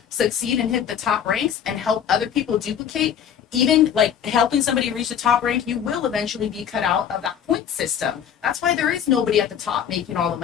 succeed and hit the top ranks and help other people duplicate. Even like helping somebody reach the top rank, you will eventually be cut out of that point system. That's why there is nobody at the top making all the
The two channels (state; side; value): quieter; right; 8.7 dB